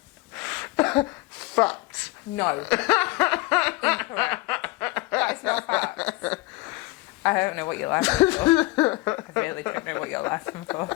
Facts. No. Incorrect. That is not facts. I don't know what you're laughing for. I really don't know what you're laughing for.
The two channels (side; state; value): right; quieter; 21.8 dB